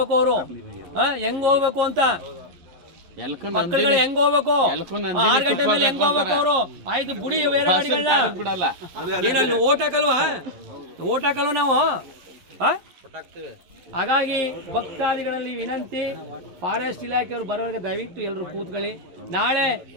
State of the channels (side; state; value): left; late; 11 ms